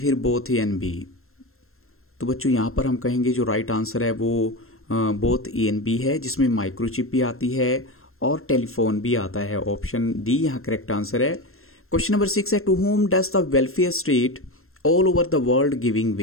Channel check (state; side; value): late; right; 0.62 ms